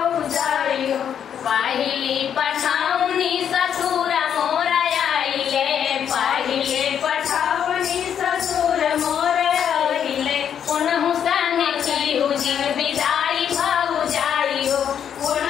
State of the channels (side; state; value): right; quieter; 8.6 dB